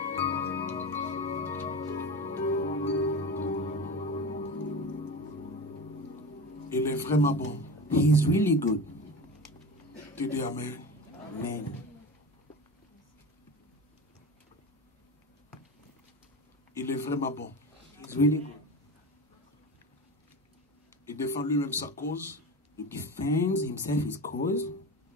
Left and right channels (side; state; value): both; normal; correlation 0.28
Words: Il est vraiment bon. He is really good. Tu dis Amen. Amen. Il est vraiment bon. He's really good. Il défend lui-même sa cause. He defends himself, his cause.